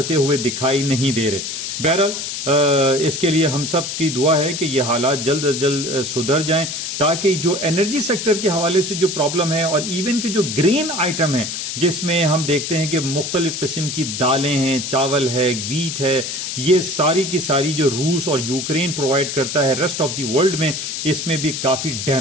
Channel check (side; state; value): left; noise; hiss, 4 dB below the sound